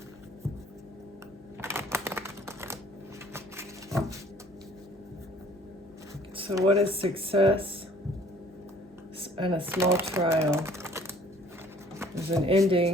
So what is success? and a small trial. There's an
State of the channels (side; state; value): both; normal; correlation 0.55